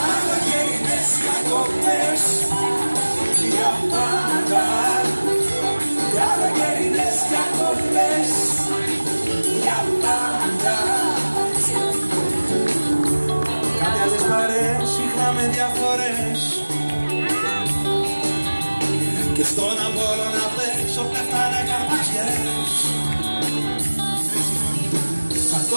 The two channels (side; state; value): both; inverted; correlation -1.00